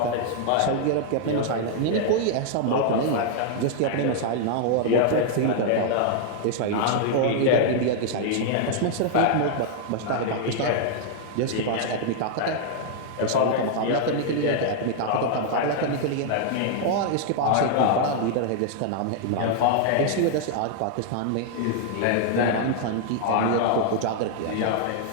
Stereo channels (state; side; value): different; both; correlation -0.01